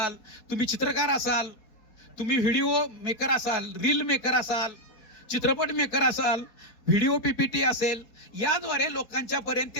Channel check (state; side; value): late; right; 4.2 ms